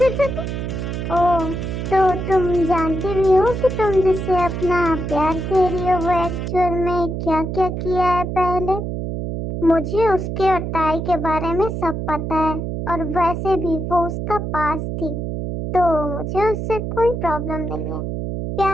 ओह, तो तुम जानती भी हो कि तुम जिससे अपना प्यार कह रही हो वो एक्चुअल में क्या क्या किया है पहले। मुझे उसके और ताई के बारे में सब पता है, और वैसे भी वो उसका पास थी, तो मुझे उससे कोई प्रॉब्लम नहीं है।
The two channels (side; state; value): right; noise; hum, 4 dB below the sound